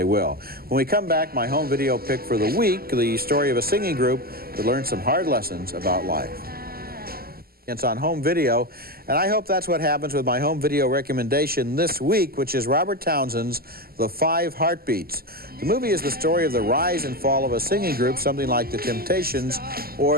will. When we come back, my home video pick for the week, the story of a singing group that learned some hard lessons about life. It's on home video, and I hope that's what happens with my home video recommendation this week, which is Robert Townsend's The 5 Heartbeats. The movie is the story of the rise and fall of a singing group, something like the Temptations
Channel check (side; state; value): left; late; 0.44 ms